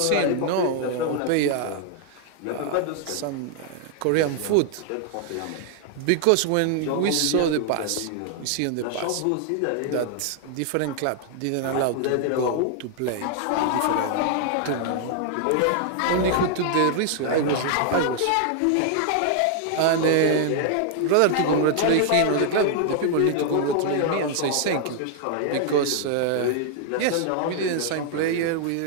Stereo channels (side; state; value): both; different; correlation 0.00